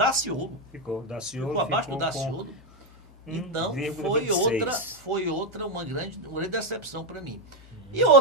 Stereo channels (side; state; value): both; normal; correlation 0.06